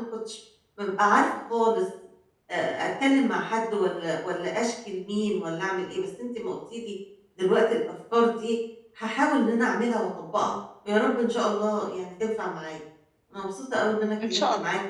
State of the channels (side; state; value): both; identical; correlation 1.00